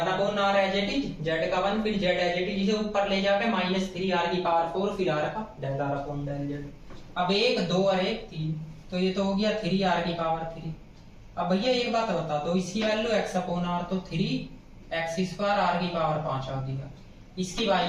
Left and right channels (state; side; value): identical; both; correlation 1.00